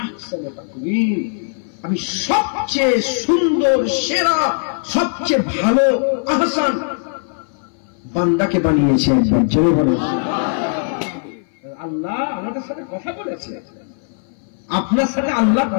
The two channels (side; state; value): right; silent; 57 dB below the other